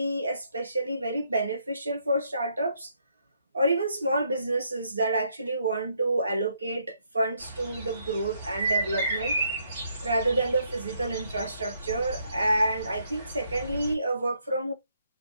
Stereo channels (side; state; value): both; inverted; correlation -0.73